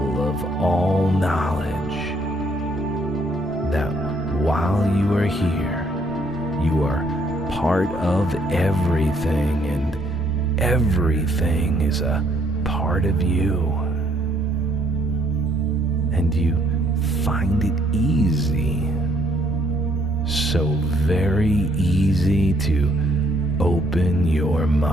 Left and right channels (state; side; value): normal; both; correlation 0.68